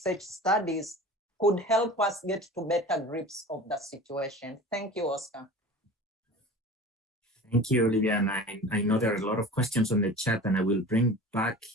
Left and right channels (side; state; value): both; normal; correlation 0.37